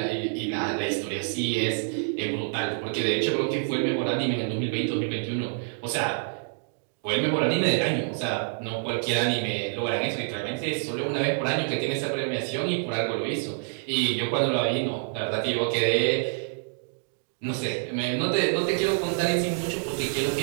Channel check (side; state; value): left; silent; digital silence